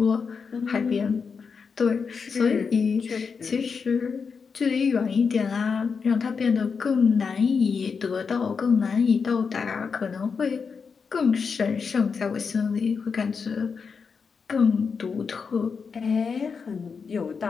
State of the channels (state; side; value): quieter; right; 5.6 dB